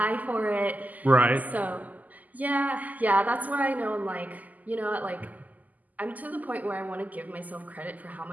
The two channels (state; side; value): late; left; 0.080 ms